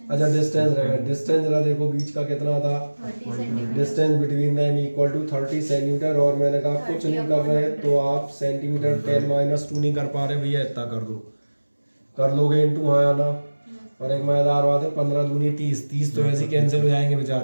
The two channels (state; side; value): inverted; both; correlation -1.00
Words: अच्छा डिस्टेंस रह गया। डिस्टेंस जरा देखो बीच का कितना था, 30 centimetre. Distance between them equal to 30 centimetre. और मैंने कहा कुछ नहीं कर रहे तो आप सेंटीमीटर 10-2 नहीं कर पा रहे भैया, इतना कर दो, कर लोगे इंटू, हाँ या ना। और एक मजेदार बात है, 15 दूनी 30, 30 तो ऐसे ही कैंसिल हो जाएंगे